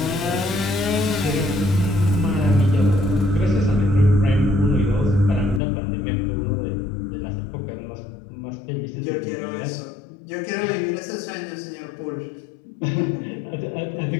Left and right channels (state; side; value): drops out; right; at 5.6 s